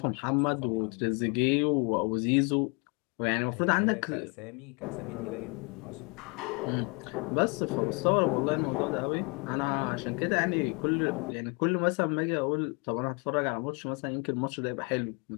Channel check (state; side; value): quieter; right; 32.1 dB